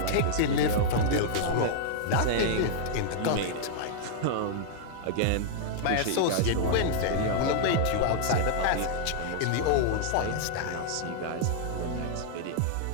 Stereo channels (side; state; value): both; different; correlation -0.01